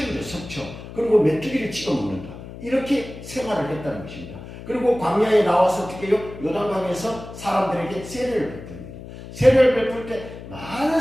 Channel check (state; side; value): noise; left; hum, 13 dB below the sound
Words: 석청. 그리고 메뚜기를 찍어 먹는다. 이렇게 생활을 했다는 것입니다. 그리고 광야에 나와서 어떻게 해요? 요단강에서 사람들에게 세례를 베풉니다. 세례를 베풀 때 많은